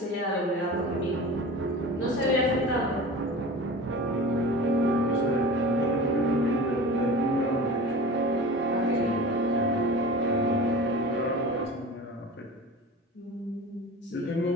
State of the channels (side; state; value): both; normal; correlation 0.34